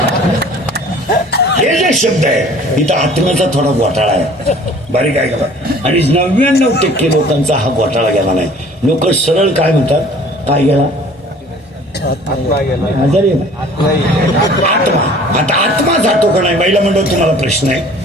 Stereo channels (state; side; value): normal; both; correlation 0.50